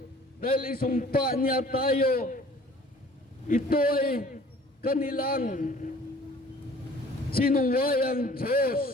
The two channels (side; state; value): both; normal; correlation 0.51